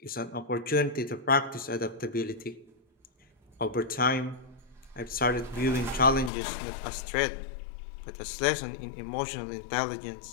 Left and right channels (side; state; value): right; drops out; at 6.3 s